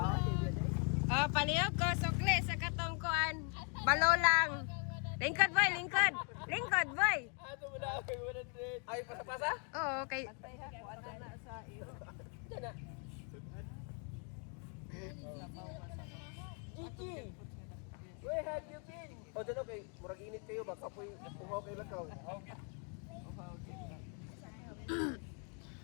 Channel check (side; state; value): right; quieter; 39.4 dB